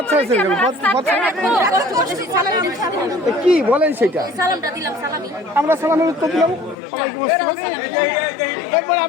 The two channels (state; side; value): drops out; right; at 6.8 s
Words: কি বলেন সেটা? আমরা সালামের উত্তর দিলাম, সবাইকে এরপর